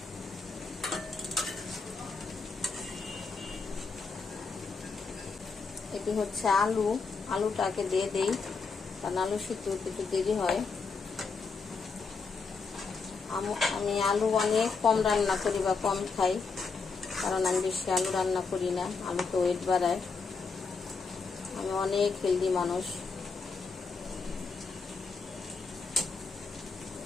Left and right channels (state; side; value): quieter; right; 4.7 dB